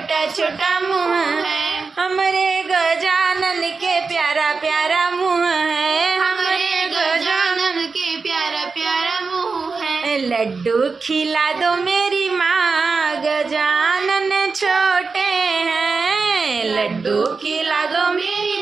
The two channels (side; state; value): left; quieter; 4.5 dB